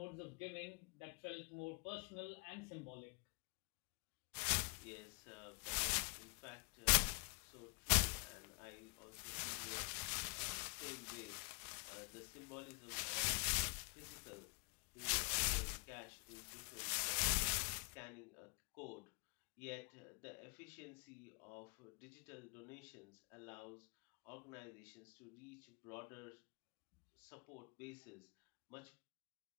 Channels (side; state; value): right; quieter; 36.2 dB